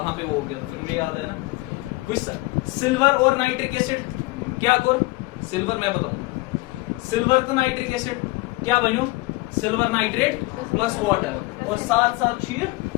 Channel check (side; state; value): right; quieter; 22.7 dB